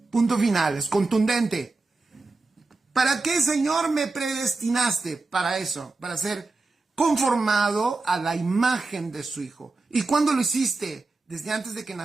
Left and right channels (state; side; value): quieter; left; 3.6 dB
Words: Punto final, es contundente. ¿Para qué, Señor, me predestinaste? Para eso, para ser conformado a la imagen de su Hijo. ¿Y cuándo lo hiciste? Desde antes de que